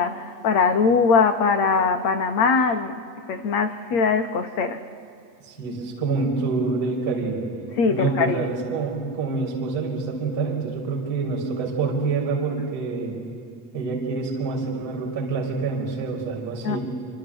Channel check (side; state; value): right; late; 8.3 ms